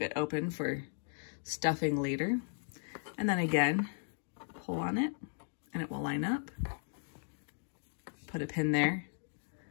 it open for stuffing later. And then again, pull on it and it will line up. Put a pin there.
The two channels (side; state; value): right; silent; digital silence